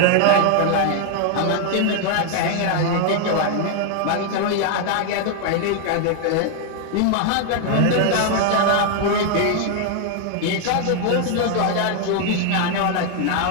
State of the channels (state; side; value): different; both; correlation 0.00